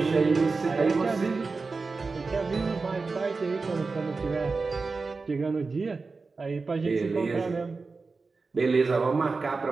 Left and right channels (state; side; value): quieter; left; 4.2 dB